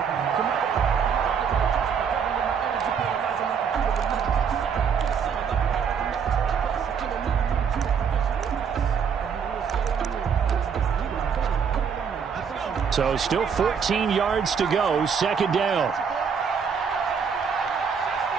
So still 14 yards to go, 2nd down.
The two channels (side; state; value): left; quieter; 6.7 dB